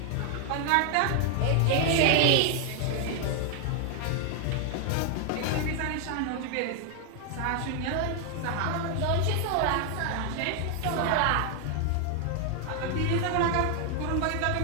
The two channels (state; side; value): different; both; correlation 0.00